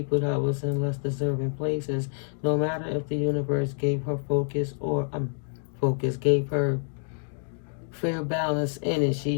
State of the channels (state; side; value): silent; right; digital silence